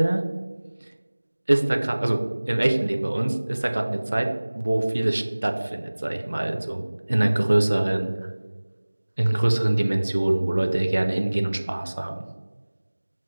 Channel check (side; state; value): both; inverted; correlation -1.00